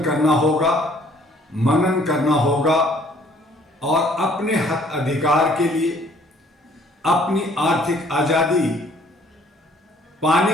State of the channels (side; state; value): both; normal; correlation 0.59